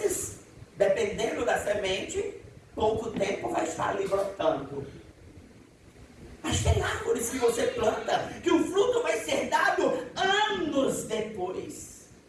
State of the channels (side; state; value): both; identical; correlation 1.00